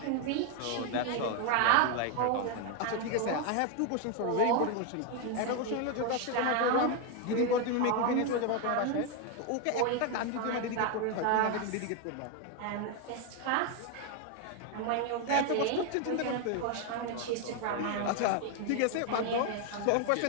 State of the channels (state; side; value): different; both; correlation 0.01